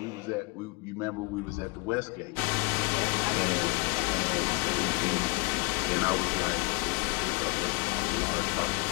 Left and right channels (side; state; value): right; quieter; 29.4 dB